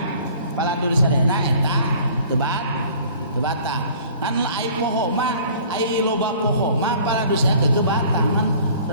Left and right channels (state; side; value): inverted; both; correlation -0.50